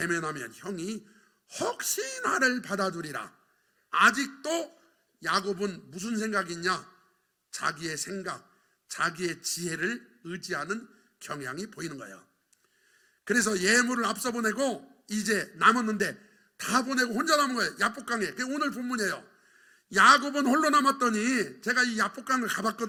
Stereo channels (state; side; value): identical; both; correlation 1.00